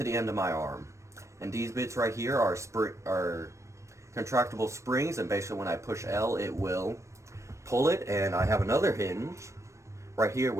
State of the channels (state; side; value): late; left; 0.15 ms